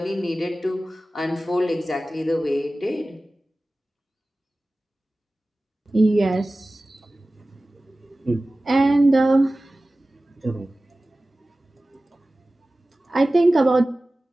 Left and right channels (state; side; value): normal; both; correlation 0.96